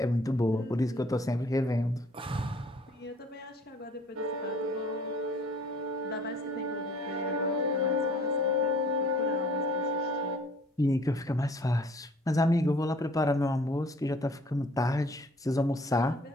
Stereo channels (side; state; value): both; normal; correlation 0.55